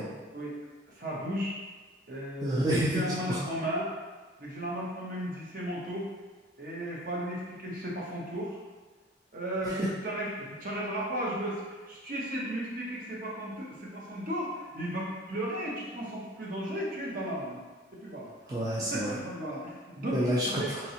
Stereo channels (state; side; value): normal; both; correlation 0.47